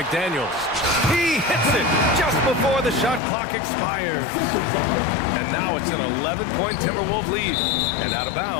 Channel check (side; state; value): right; drops out; at 3.2 s